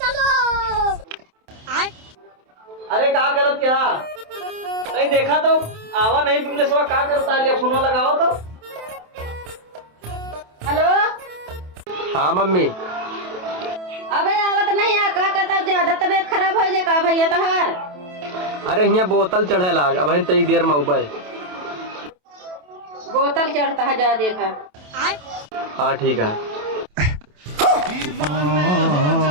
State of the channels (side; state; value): left; late; 27 ms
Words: अरे क्या करत क्या नहीं देखा तो आवा नहीं तुमने सब क्या करता है फोन लगाओ तो। हेलो हाँ मम्मी। अबे आवत नहीं है का कहता ज्यादा तबीयत खराब हो जाए का भैया तहार। अरे यहाँ बोतल चढ़े लाग अब तई देर में उबे बोतल चढ़ता है जा देखा। हाँ ठीक है।